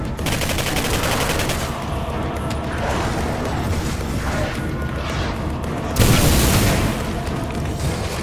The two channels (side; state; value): both; identical; correlation 1.00